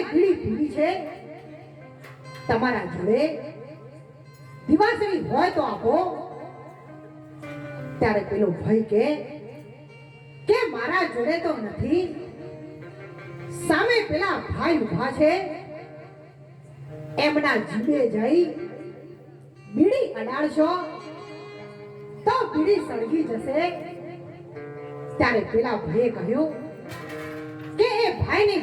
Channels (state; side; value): identical; both; correlation 1.00